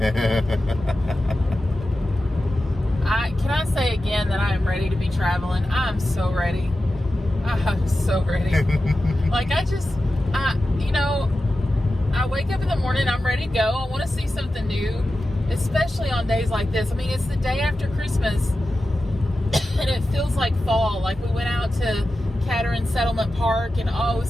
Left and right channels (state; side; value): normal; both; correlation 0.93